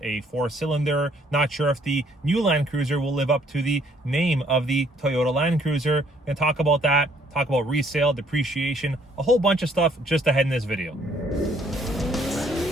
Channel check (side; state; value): both; normal; correlation 0.64